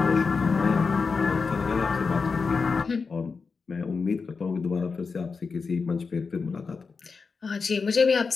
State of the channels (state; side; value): quieter; right; 4.9 dB